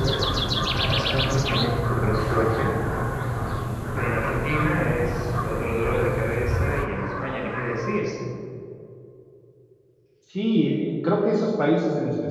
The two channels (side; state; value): both; identical; correlation 1.00